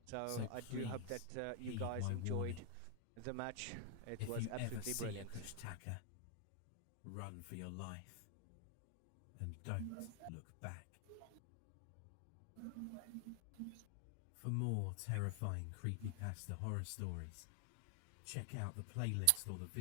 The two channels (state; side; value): different; both; correlation 0.00